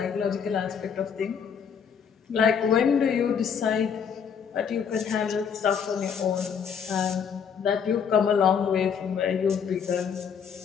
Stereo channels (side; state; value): right; quieter; 7.0 dB